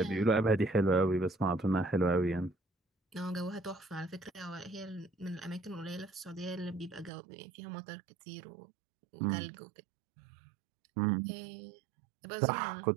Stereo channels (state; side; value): drops out; left; at 7.1 s